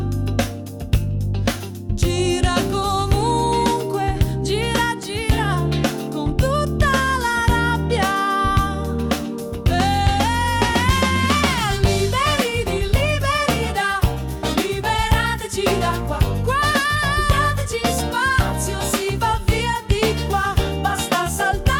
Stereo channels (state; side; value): identical; both; correlation 1.00